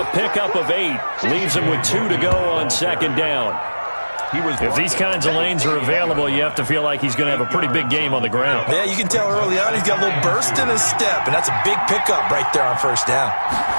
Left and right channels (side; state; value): both; inverted; correlation -1.00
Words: pickup of 8. Leaves him with 2 to go on 2nd down. If these kinds of lanes are available, you have to feel like he's going to have a pretty big game on the ground. Yeah, you can tell early on he's got a little burst in his step, and that's a big pickup right there on 1st down.